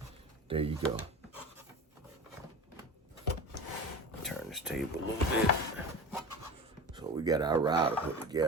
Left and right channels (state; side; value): normal; both; correlation 0.31